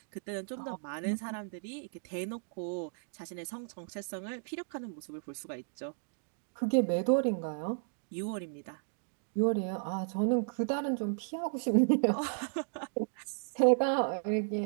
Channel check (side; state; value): left; silent; digital silence